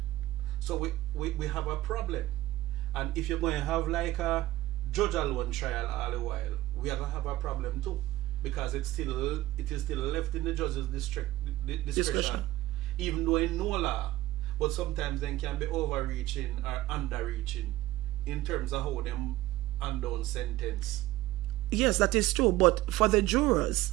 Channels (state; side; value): quieter; left; 16.5 dB